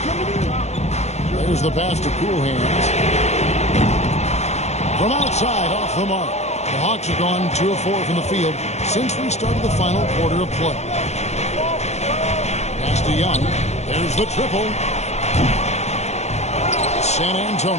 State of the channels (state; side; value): late; right; 0.32 ms